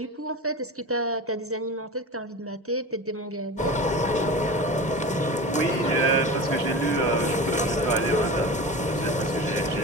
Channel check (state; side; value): normal; both; correlation 0.30